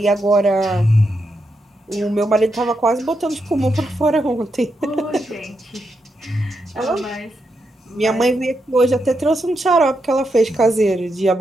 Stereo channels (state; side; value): normal; both; correlation 0.83